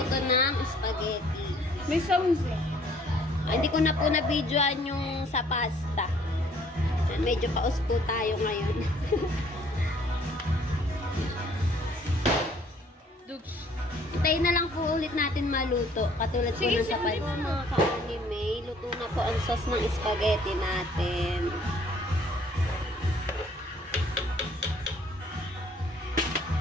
to ng spaghetti. May sounds eh. Hindi ko na po na-videoan yung sa pasta. Medyo paus po tayo ngayon. Tayo na lang po ulit natin maluto. Katulad po ng sa pasta. Mga ka-anime, luto na po ang sauce ng spaghetti natin.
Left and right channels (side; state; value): both; normal; correlation 0.59